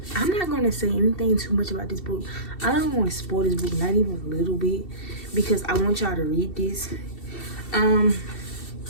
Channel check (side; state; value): right; late; 2.7 ms